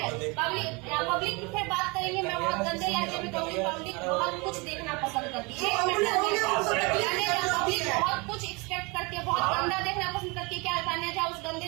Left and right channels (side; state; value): left; quieter; 28.0 dB